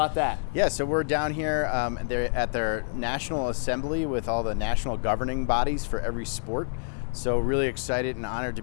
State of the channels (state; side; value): silent; right; digital silence